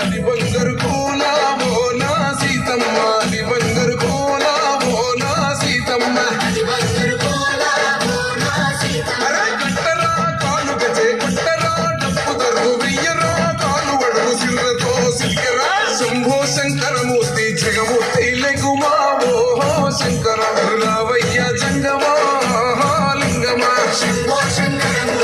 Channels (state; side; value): noise; right; hum, 25 dB below the sound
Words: బంగారు కోల ఓ నా సీతమ్మ, అది బంగారు కోల ఓ నా సీతమ్మ. కట్టరా కాలు గజే కొట్టరా డప్పు తరుగు వెయ్యరా కాలు వడుగు సిర్రతో సిరికెరా. శంభో శంకరమూర్తి జగమూర్తి లెగుమా ఓహో శంకర రావయ్య జంగమా లింగమా. శంభో